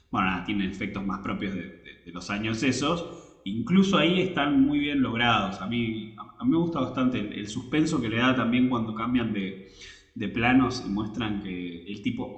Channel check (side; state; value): both; identical; correlation 1.00